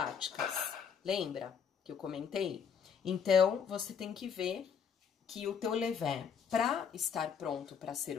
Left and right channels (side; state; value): right; quieter; 7.0 dB